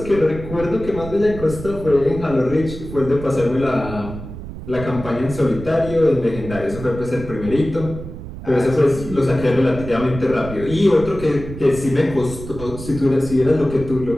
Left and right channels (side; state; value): right; noise; rumble, 11 dB below the sound